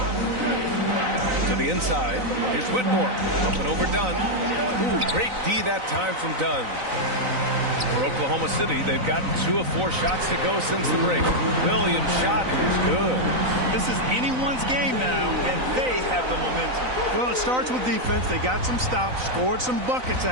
To the inside. Here's Whitmore. Up and over Dunn. Ooh, great D that time from Dunn. For Oklahoma City, they've gotten 2 of 4 shots to go since the break. Williams' shot is good. This is anyone's game now, and they have the momentum. Well, it starts with defense. They got some stops, scored some buckets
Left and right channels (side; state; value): left; late; 3.9 ms